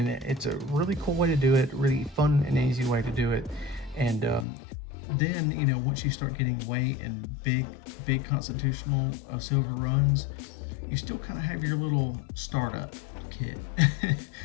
it's a really cool way to do it, really fun and easy way to do it. And then, once you start getting weight and big constitutional silver runs, you still kind of have your little startup kit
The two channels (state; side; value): drops out; right; at 4.5 s